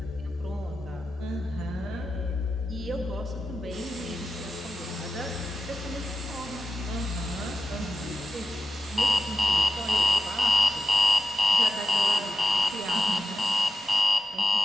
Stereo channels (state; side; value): normal; both; correlation 0.92